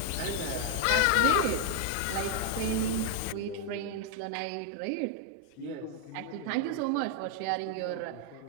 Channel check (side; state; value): both; different; correlation 0.00